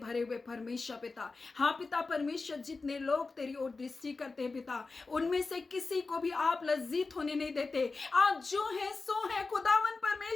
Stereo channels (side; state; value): right; quieter; 3.9 dB